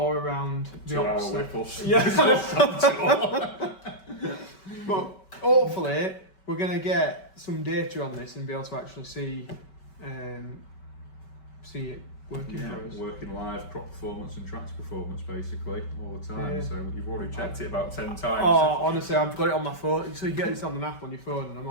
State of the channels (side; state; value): right; late; 5.2 ms